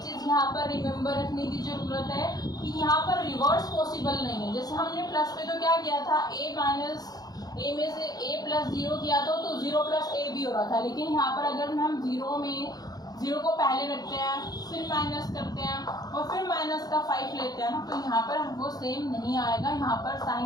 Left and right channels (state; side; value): late; right; 0.19 ms